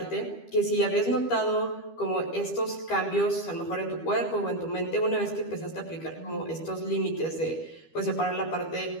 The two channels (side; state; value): right; late; 12 ms